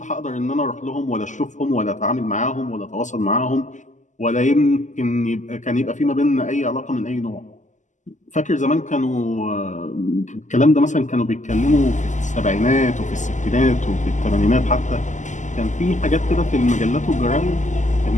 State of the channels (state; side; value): late; right; 0.36 ms